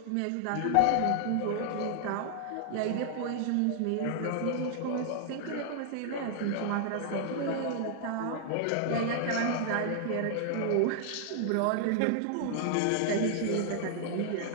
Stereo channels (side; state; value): both; different; correlation 0.00